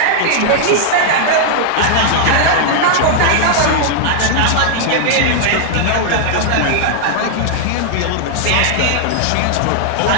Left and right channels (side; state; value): both; different; correlation -0.01